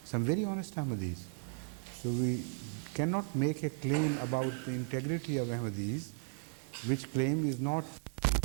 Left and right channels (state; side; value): silent; left; 54 dB below the other